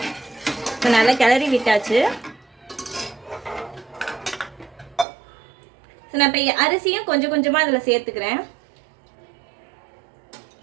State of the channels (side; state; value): left; drops out; at 5.1 s